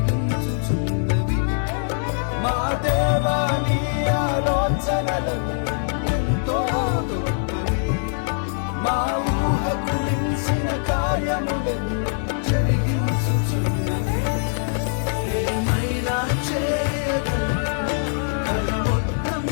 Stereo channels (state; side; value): silent; right; 56 dB below the other